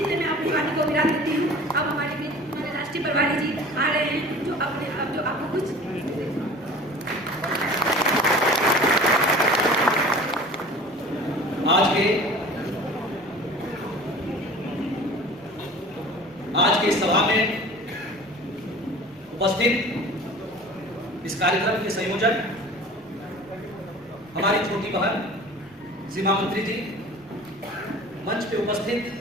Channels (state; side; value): normal; both; correlation 0.42